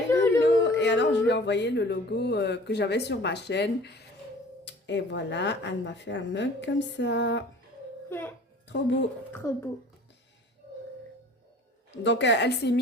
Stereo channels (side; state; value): both; normal; correlation 0.46